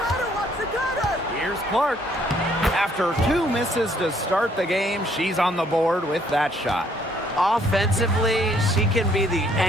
Here's Clark. After 2 misses to start the game, she's on the board with that shot. Offensively, she can be the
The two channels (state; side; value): normal; both; correlation 0.65